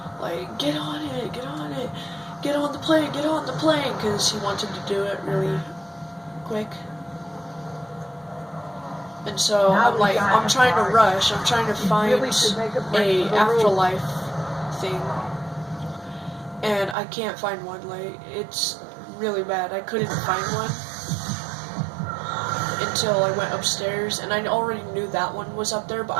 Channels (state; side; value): drops out; left; at 16.9 s